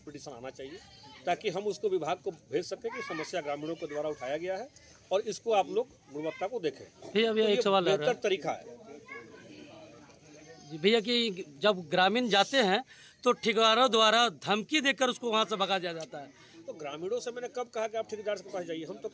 पिटीशन आना चाहिए ताकि हम उसको विभाग को भेज सकें कि समस्या ग्रामीणों के द्वारा उठाया गया है और इसको आप लोग गुणवत्ता को देखें। भैया एक सवाल बेहतर तरीका है जी भैया कि जब ग्रामीण जाते हैं तो ठेकेदारों द्वारा धमकी देकर उसको वहाँ से भगा दिया जाता है। तो ग्रामीणों से मैंने कब कहा कि आप ठेकेदार के पास जाइए? हम तो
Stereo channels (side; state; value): both; identical; correlation 1.00